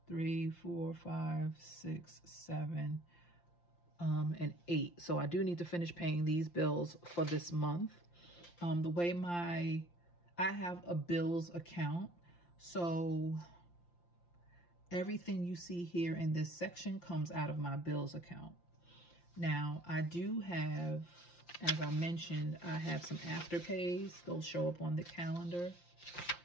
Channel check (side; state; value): right; late; 5.8 ms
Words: 3, 4, 5, 6, 7, and 8. So I do need to finish paying these bills for this month. The way I have a bills account, so everything you see here in this section comes out of my bills account. Now, I do have, as I mentioned, I have some afterpays. Those show up on the calendar.